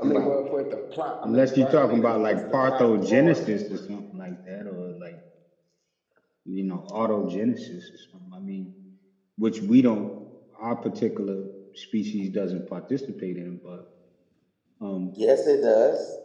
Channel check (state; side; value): identical; both; correlation 1.00